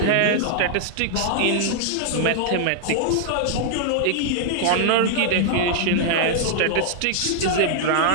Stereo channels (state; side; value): different; both; correlation -0.01